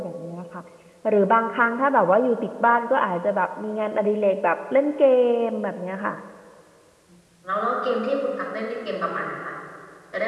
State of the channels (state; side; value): identical; both; correlation 1.00